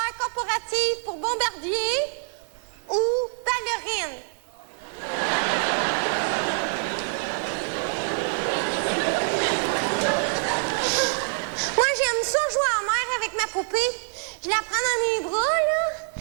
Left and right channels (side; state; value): left; silent; 58 dB below the other